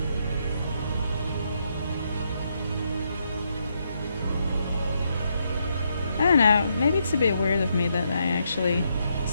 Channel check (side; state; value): both; inverted; correlation -0.78